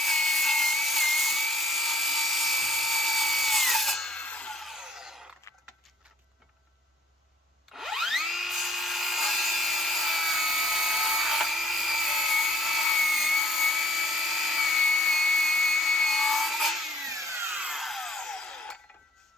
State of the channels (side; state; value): both; normal; correlation 0.59